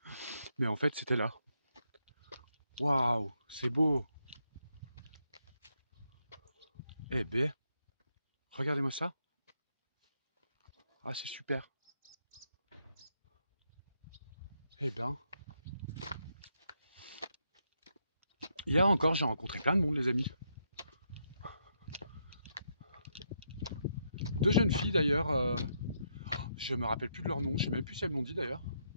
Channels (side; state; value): both; inverted; correlation -0.78